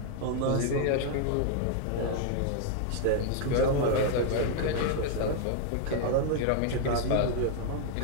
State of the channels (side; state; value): both; different; correlation 0.00